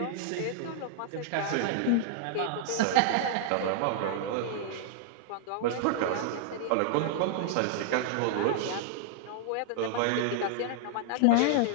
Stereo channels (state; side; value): different; both; correlation -0.01